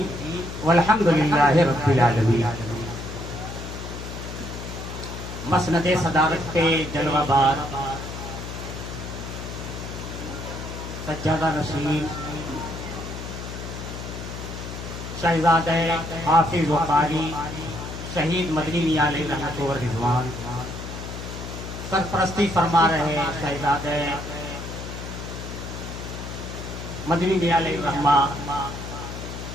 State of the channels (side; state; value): left; noise; hum, 8 dB below the sound